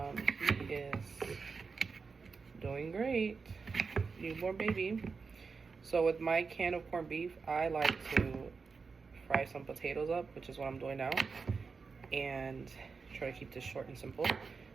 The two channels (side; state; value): left; quieter; 4.9 dB